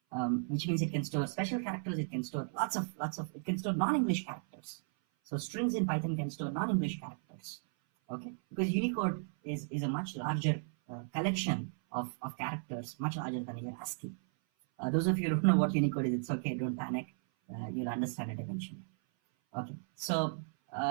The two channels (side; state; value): left; silent; 54 dB below the other